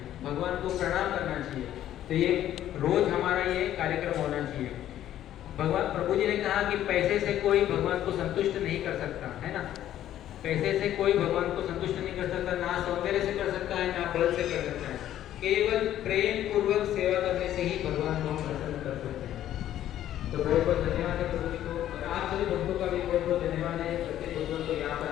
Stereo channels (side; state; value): right; quieter; 12.1 dB